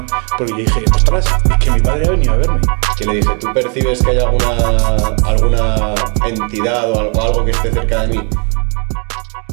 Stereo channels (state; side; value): quieter; left; 37.5 dB